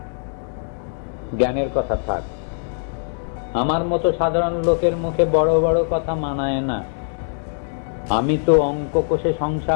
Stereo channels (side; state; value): right; silent; digital silence